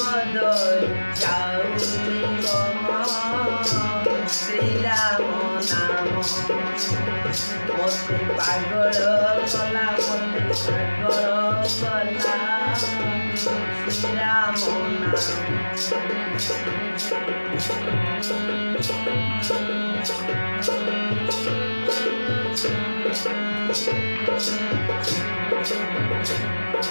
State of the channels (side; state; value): both; inverted; correlation -1.00